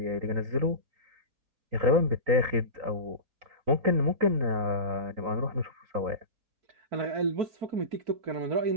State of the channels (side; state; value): left; late; 3.9 ms